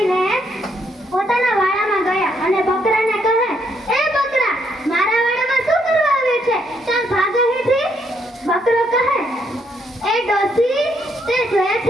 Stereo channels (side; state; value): both; normal; correlation 0.73